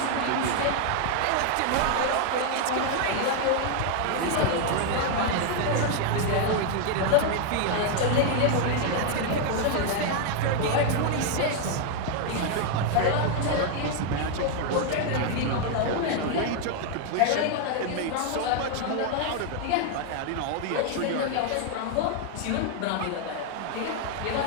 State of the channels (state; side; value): different; both; correlation 0.00